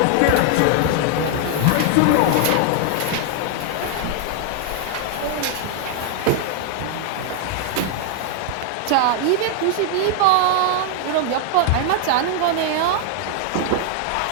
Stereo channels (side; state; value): both; different; correlation 0.00